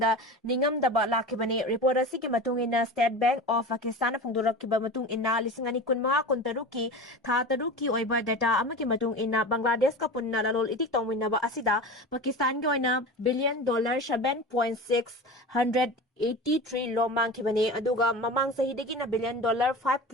ningam daba lakhibani report asi ki matung ina State Bank of Pakistan phongdorak kiba matung ina lisingani kunma kuntaruki tha taruki oiba data amaki matung ina Bangladesh ka punna lalol itik tongminaba asida Pakistan ki oina billion dollar 7.683 lo mangkhibani aduga mamang sahidagi na billion dollar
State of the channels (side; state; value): both; normal; correlation 0.31